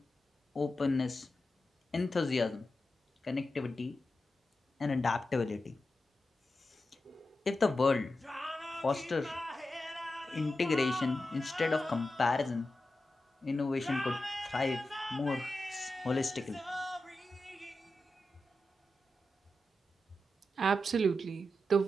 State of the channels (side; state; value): both; normal; correlation 0.91